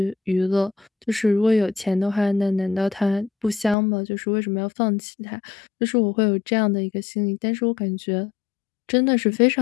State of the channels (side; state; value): right; drops out; at 3.8 s